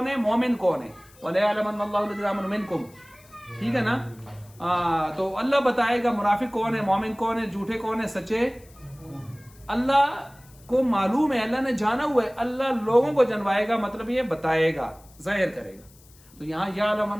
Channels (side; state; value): left; noise; hiss, 26 dB below the sound